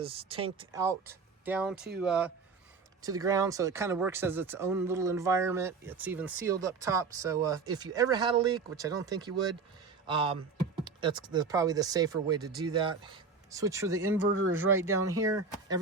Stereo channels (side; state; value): left; quieter; 4.8 dB